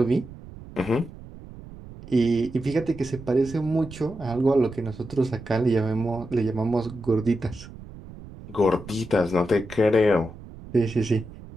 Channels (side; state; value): right; noise; rumble, 16 dB below the sound